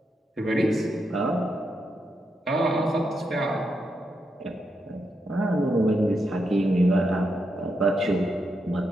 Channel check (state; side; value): normal; both; correlation 0.83